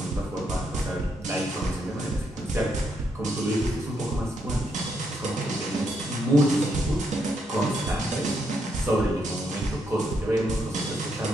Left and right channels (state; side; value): normal; both; correlation 0.78